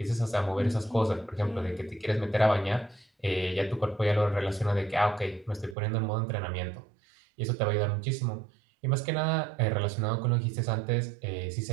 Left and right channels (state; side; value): drops out; left; at 5.8 s